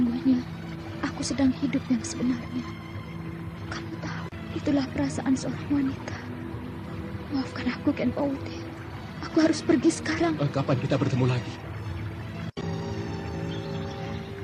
aku sedang hidup yang sebenarnya. Kamu tahu, itulah perasaan seorang wanita. Maafkan aku, Ken Pauti. Aku harus pergi sekarang. Kapan kita bertemu lagi?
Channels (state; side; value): identical; both; correlation 1.00